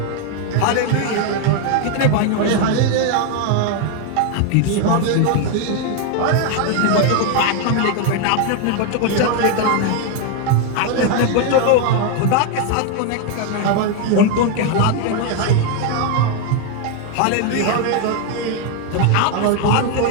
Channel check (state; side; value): different; both; correlation 0.01